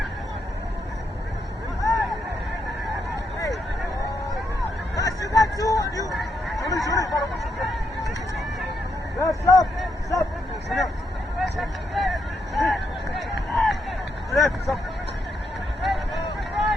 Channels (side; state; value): both; normal; correlation 0.79